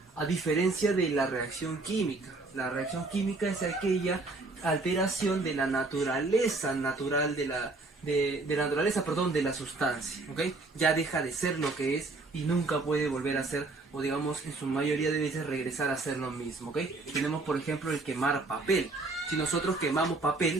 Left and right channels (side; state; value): left; quieter; 3.4 dB